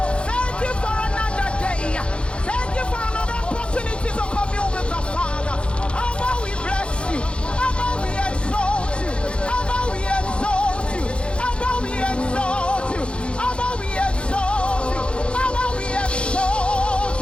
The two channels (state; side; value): late; right; 0.057 ms